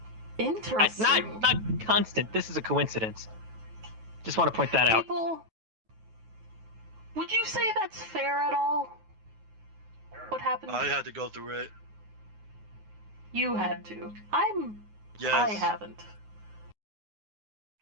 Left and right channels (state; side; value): late; left; 9.5 ms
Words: Interesting. Not constant. This is a coincidence. Just want to point that out. People, would you say that's fair at all? What happened? I had to go through it. You had to. Yes. I haven't.